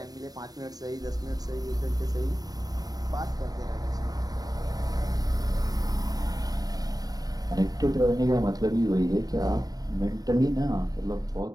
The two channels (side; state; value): left; late; 0.18 ms